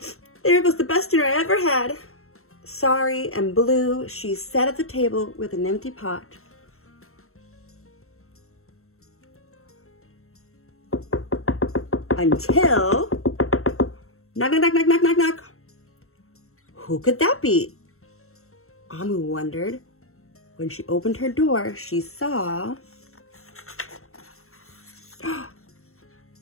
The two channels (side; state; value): right; late; 0.63 ms